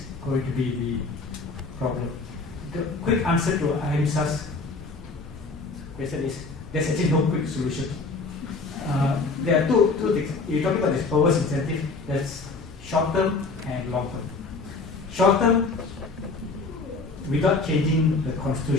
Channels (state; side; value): quieter; right; 3.9 dB